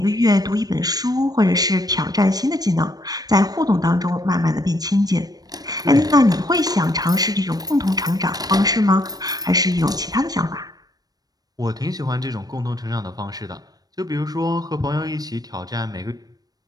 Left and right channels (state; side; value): late; left; 0.19 ms